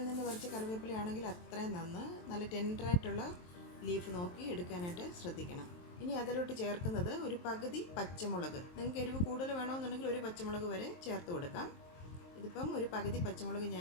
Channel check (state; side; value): late; right; 23 ms